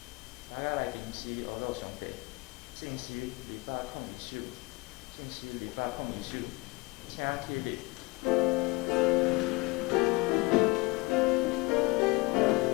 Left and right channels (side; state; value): right; quieter; 25.2 dB